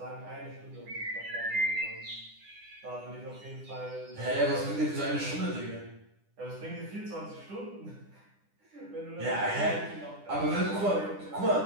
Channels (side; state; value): left; late; 10 ms